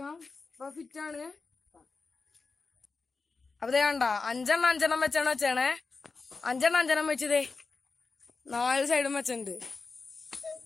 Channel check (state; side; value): quieter; right; 4.3 dB